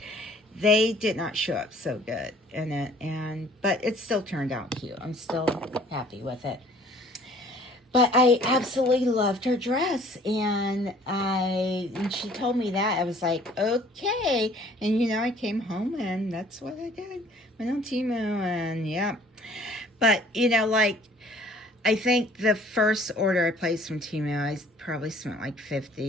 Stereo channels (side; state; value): both; normal; correlation 0.54